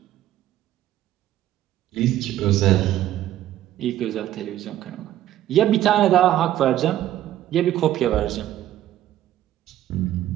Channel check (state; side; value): quieter; left; 13.0 dB